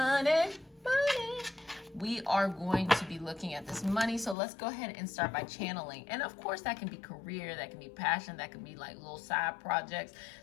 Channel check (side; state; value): right; drops out; at 4.4 s